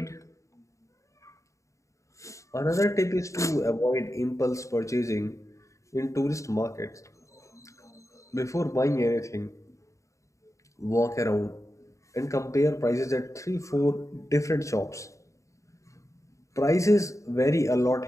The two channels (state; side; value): late; right; 0.15 ms